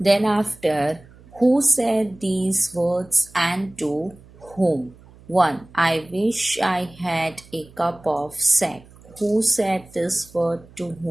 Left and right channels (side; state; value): right; noise; hum, 24 dB below the sound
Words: Then after, who said these words and to whom? 1. I wish I had a cup of sack. Who said this word to